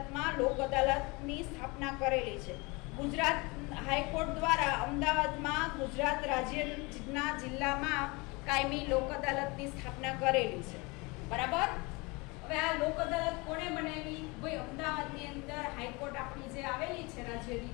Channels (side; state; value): right; quieter; 26.4 dB